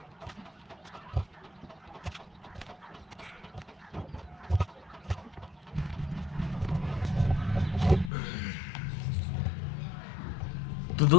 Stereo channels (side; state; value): right; drops out; at 8.1 s